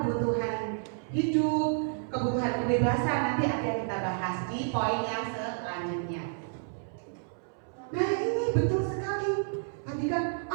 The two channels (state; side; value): silent; left; 58 dB below the other